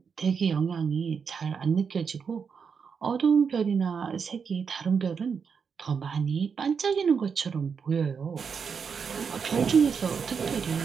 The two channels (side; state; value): left; quieter; 6.2 dB